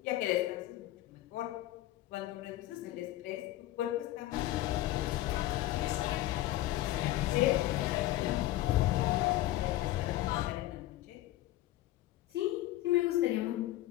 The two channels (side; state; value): right; quieter; 15.7 dB